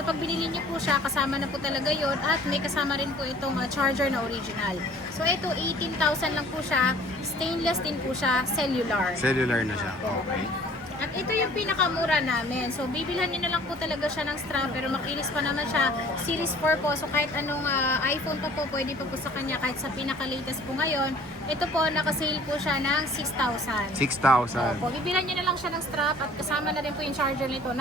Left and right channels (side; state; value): both; normal; correlation 0.52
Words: pag binili niyo po siya kasama na po talaga yon at may kasama rin po itong charger na original. So ito 18,000 lang po siya. Stainless din po siya. Cellular. Cellular na siya. Okay. At ito yung pinakamura namin. So, bibilhan niyo na lang po talaga siya ng strap pero makinis pa naman siya. Series 4 po. So, kahit anong iPhone pa po, pwede pa po sa kanya. Kahit sa pinaka-latest po ngayon. Ito po, nakasale po siya ng 6,000. 6,000. Opo, bibilhan niyo na lang siya ng strap at kasama na rin po yung charger nito